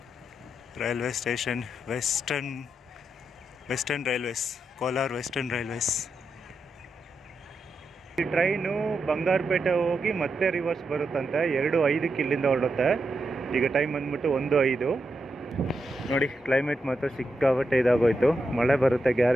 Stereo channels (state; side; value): normal; both; correlation 0.85